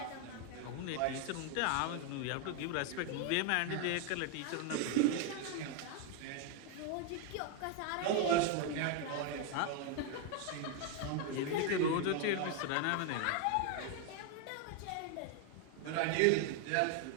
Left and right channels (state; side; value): different; both; correlation 0.01